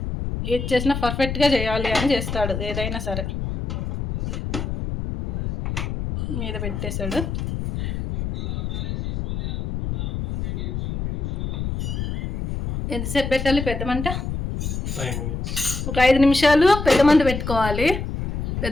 ఏది చేసినా పర్ఫెక్ట్గా చేయాలి అని చేస్తాడు, ఏదైనా సరే. మీద పెట్టేశాడు. ఎంతసేపు పెట్టాలి పెద్ద మంట? 5 minutes. ఒక 5 నిమిషాలు పెద్ద మంట పెట్టుకోవాలి.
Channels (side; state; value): left; noise; rumble, 3 dB below the sound